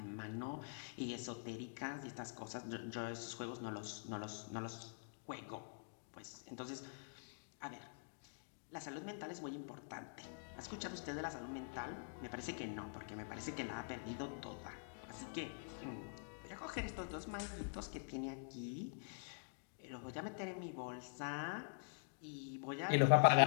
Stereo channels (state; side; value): silent; right; digital silence